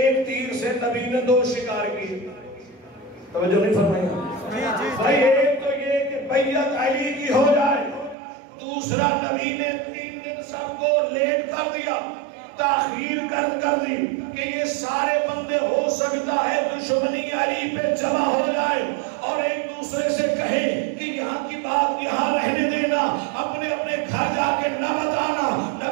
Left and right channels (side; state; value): left; drops out; at 8.2 s